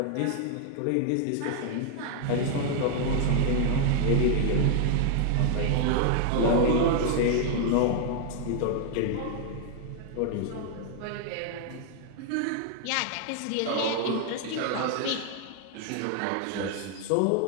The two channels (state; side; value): different; both; correlation 0.00